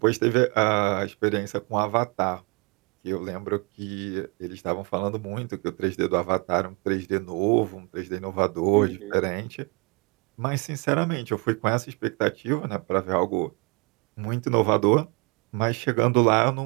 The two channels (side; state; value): left; quieter; 29.3 dB